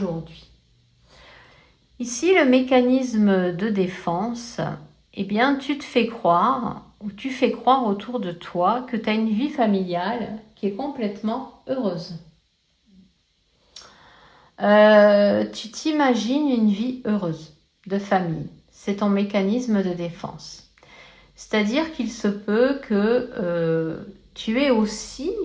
Ici, le mécanisme de défense, eh bien, tu te fais croire, ou tu fais croire autour de toi que tu as une vie familiale qui est complètement heureuse. Tu t'imagines une vie heureuse de famille. C'est ton mécanisme de défense. C'est-à-dire qu'il se peut que tu aies aussi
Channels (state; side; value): identical; both; correlation 1.00